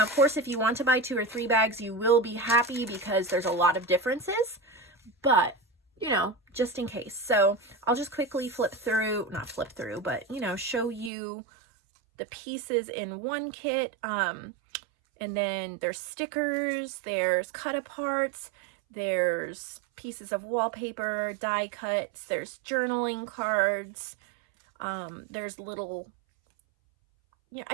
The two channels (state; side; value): drops out; left; at 11.1 s